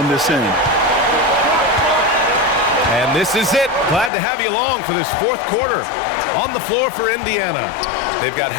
this end. And this is it. Glad to have you along for this fourth quarter. On the floor for Indiana, they've got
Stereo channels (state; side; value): drops out; right; at 4.1 s